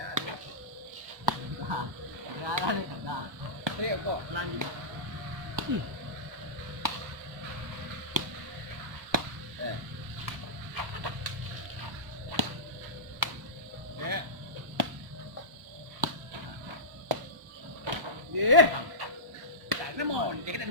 Ya ada kada. Saya kok lanjut. Ye. Tak nama ni kita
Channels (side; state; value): left; late; 1.0 ms